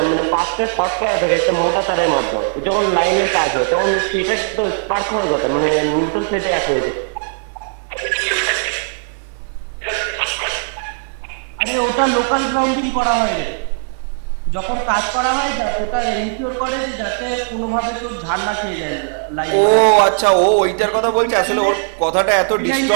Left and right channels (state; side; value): silent; left; 58 dB below the other